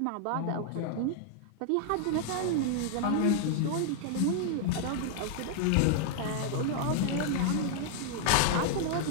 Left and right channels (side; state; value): both; different; correlation 0.00